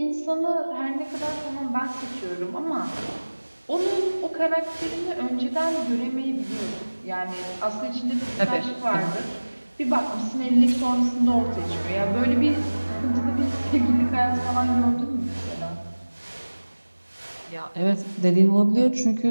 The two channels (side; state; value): both; inverted; correlation -1.00